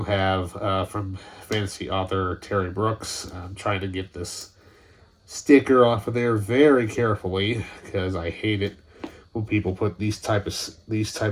have from fantasy author Terry Brooks. I'm trying to get this sticker off of there very carefully because I hate it when people put these types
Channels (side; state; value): both; identical; correlation 1.00